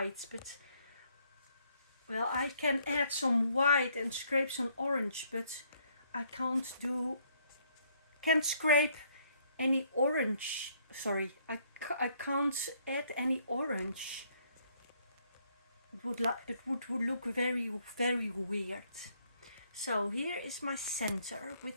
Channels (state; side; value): inverted; both; correlation -0.67